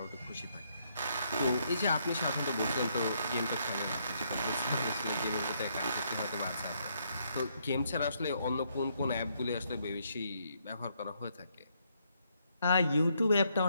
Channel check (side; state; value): both; inverted; correlation -0.73